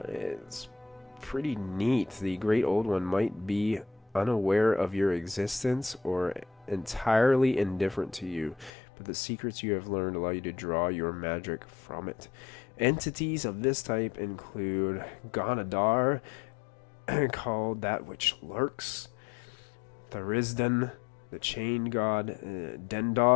pretty neat. The Great Old One might be unaware of your existence or entirely indifferent to you, but the secrets you have learned allow you to draw your magic from it. Entities of this type include Ganadar, called That Which Lurks, Thurisdan, the Chain God,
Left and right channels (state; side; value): drops out; right; at 8.7 s